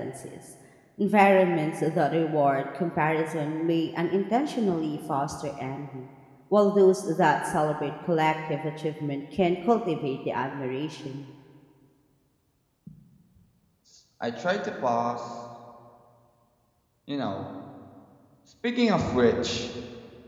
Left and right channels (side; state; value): both; identical; correlation 1.00